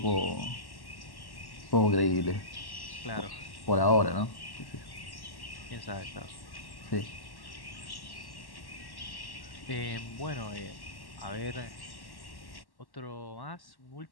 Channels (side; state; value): right; late; 1.1 ms